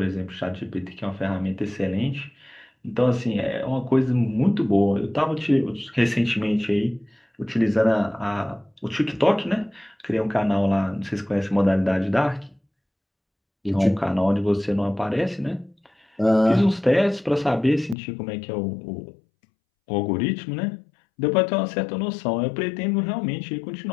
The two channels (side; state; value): right; drops out; at 17.9 s